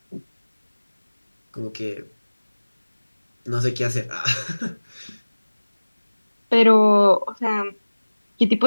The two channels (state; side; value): inverted; both; correlation -1.00